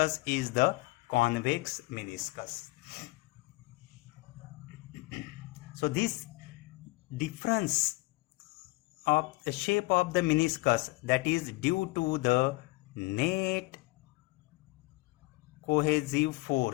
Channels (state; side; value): quieter; right; 22.6 dB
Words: is the convex meniscus. So this difference of the shape of the meniscus, that is due to the net cohesive